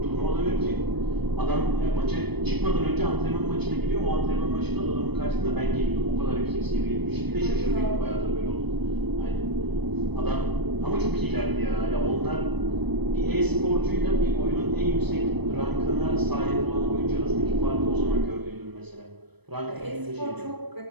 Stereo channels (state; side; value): late; left; 0.98 ms